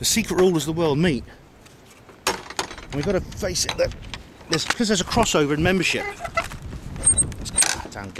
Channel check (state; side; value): identical; both; correlation 1.00